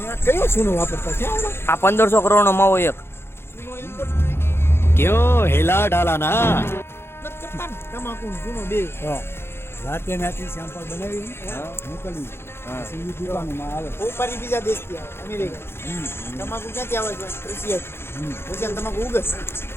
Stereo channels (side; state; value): right; late; 0.12 ms